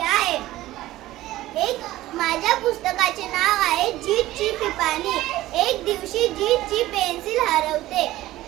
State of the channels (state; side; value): quieter; left; 16.1 dB